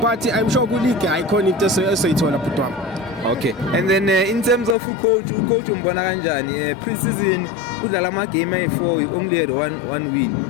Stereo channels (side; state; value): right; drops out; at 4.8 s